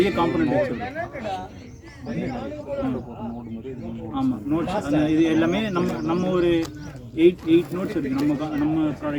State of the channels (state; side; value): identical; both; correlation 1.00